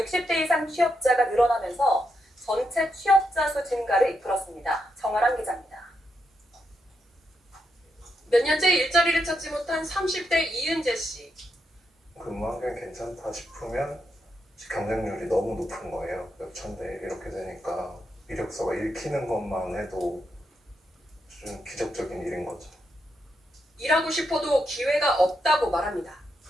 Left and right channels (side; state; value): both; normal; correlation 0.82